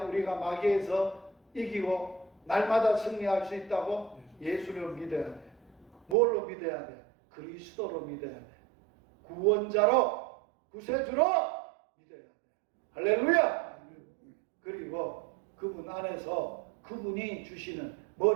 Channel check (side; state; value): left; drops out; at 6.2 s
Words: 우리가 마귀에서 이기고 날마다 승리할 수 있다고? 예수를 믿어야 돼. 뭘로 믿어야 돼? 그리스도로 믿어야 돼. 구원자로, 구세주로 믿어야 돼. 할렐루야! 그리고 그분 안에서 그분이 주시는